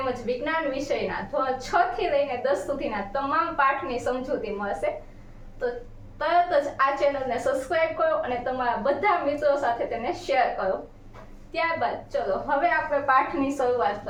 વિજ્ઞાન વિષયના ધોરણ 6 થી લઈને 10 સુધીના તમામ પાઠની સમજૂતી મળશે. તો તરત જ આ ચેનલને સબસ્ક્રાઇબ કરો અને તમારા બધા મિત્રો સાથે તેને શેર કરો. ત્યારબાદ ચલો હવે આપણે પાઠની શરૂઆત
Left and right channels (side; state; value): both; identical; correlation 1.00